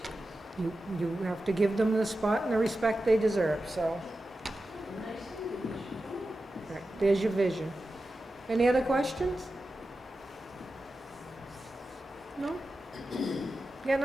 You have to give them the spot and the respect they deserve. So, And nice decorations. all right, there's your vision. Any other questions? No? Got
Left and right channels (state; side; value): normal; both; correlation 0.92